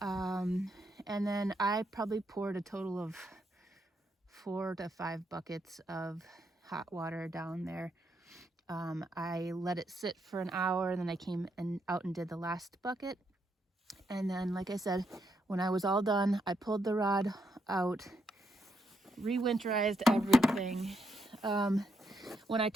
and then I probably poured a total of 4 to 5 buckets of hot water down there. I let it sit for an hour, and then I came out and did the last bucket. And then, like I said, when I was all done, I pulled the rod out, re-winterized everything. When I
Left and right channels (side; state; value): both; normal; correlation 0.78